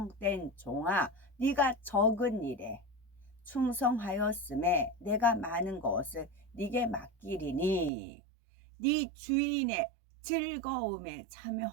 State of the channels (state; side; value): drops out; left; at 7.9 s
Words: 종아 네가 적은 일에 충성하였음에 내가 많은 것을 네게 맡기리니 네 주인의 즐거움에